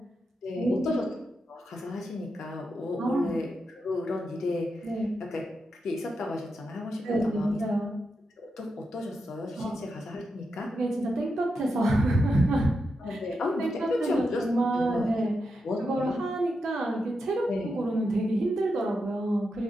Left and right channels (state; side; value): normal; both; correlation 0.86